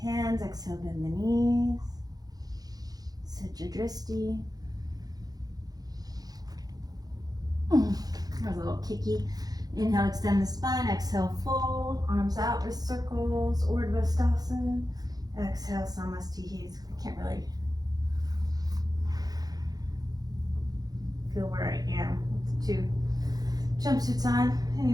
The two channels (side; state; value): left; late; 0.19 ms